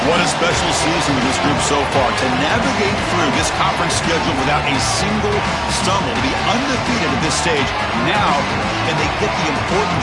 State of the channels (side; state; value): both; identical; correlation 1.00